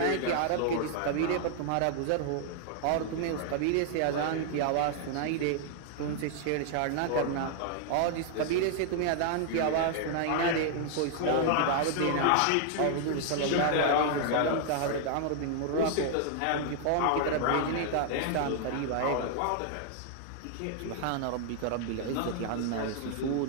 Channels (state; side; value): different; both; correlation 0.00